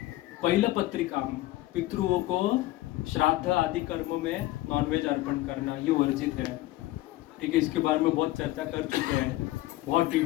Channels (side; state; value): right; quieter; 17.1 dB